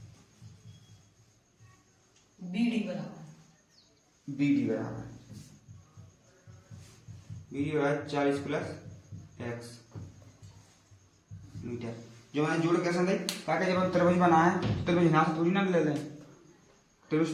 BD बराबर BD बराबर 40 प्लस x मीटर। जो मैंने जोड़ कैसे दी, ताकि जब हम त्रिभुज बनाए तो त्रिभुज यहाँ से थोड़ी ना ले लें,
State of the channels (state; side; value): identical; both; correlation 1.00